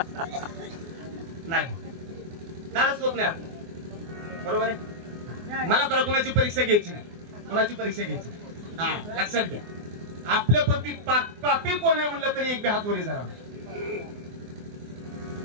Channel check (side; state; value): left; late; 24 ms